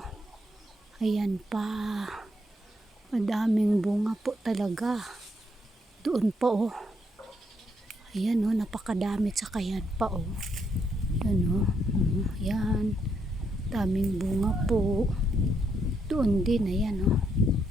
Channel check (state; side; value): normal; both; correlation 0.76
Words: Ayan pa. Madaming bunga po talaga. Doon pa oh. Ayan oh, napakadami. Tsaka yan pa oh. Ayan oh. Ayan. Daming bunga po. Doon din, ayan oh.